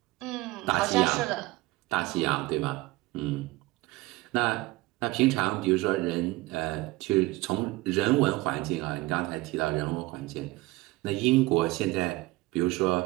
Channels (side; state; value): left; quieter; 20.4 dB